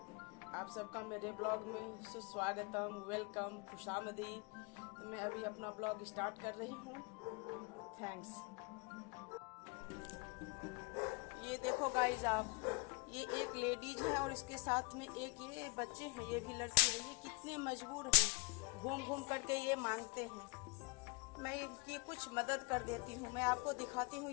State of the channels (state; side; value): quieter; right; 29.8 dB